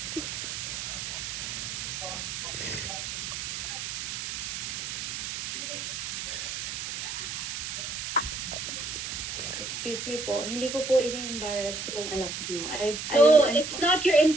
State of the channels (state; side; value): noise; right; hiss, 5 dB below the sound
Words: Excuse me po. Hindi ko po ini-embarrass yung anak mo. No, it's not your